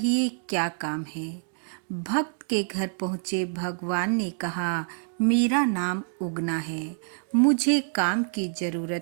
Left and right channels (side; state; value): left; silent; digital silence